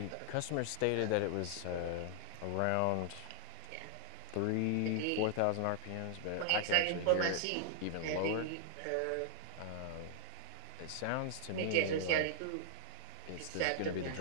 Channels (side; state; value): both; different; correlation -0.01